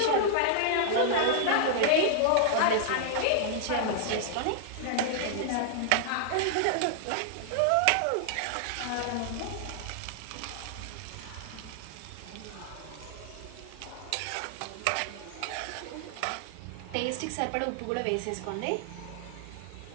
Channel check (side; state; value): both; different; correlation -0.01